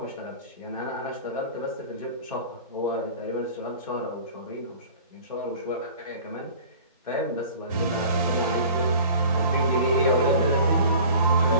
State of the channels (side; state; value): both; inverted; correlation -0.43